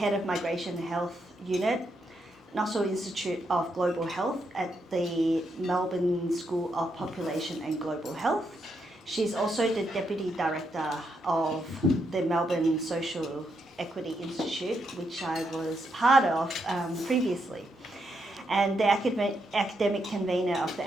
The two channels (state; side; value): normal; both; correlation 0.80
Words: of Migration Health Unit, Nossal Institute of Global Health at the Melbourne School of Population and Global Health. She's also the Deputy Director of the Melbourne Social Equity Institute, which I was part of previously, and the academic convener of the